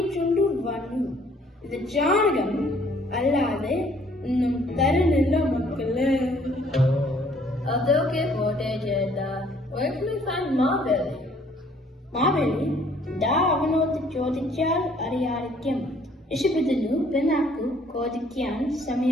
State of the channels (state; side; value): normal; both; correlation 0.61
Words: വന്നു. ഇത് ചാണകം അല്ലാതെ ഒന്നും തരുന്നില്ല മക്കള്. അതൊക്കെ പോട്ടെ ചേട്ടാ. Where can we find Maveli? Maveli ദാ അവനോട് ചോദിച്ചാൽ അറിയാതിരിക്കും. ഋഷഭത്തിനു പിന്നാക്കു ചോദിക്കാൻ